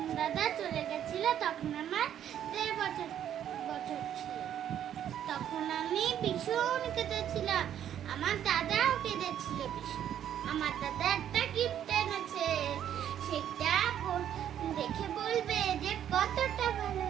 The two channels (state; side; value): quieter; left; 10.2 dB